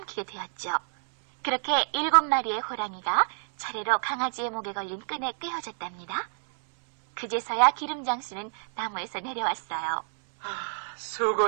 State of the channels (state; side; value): silent; left; 59 dB below the other